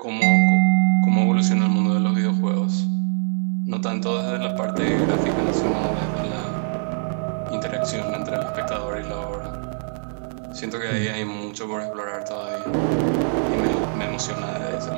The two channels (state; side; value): silent; left; 64 dB below the other